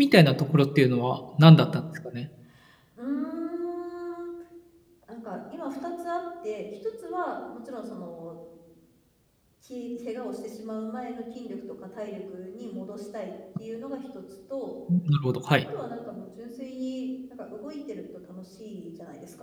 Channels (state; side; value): identical; both; correlation 1.00